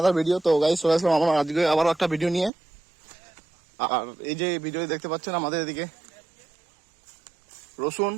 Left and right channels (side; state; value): left; drops out; at 2.5 s